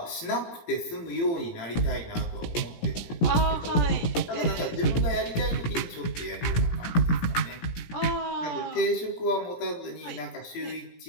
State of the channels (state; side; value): late; right; 17 ms